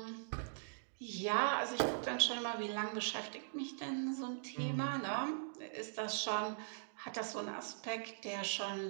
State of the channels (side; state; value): left; silent; digital silence